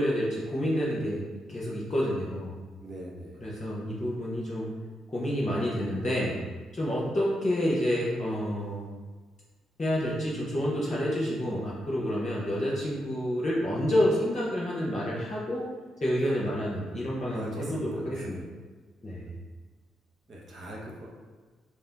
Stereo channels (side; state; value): both; normal; correlation 0.85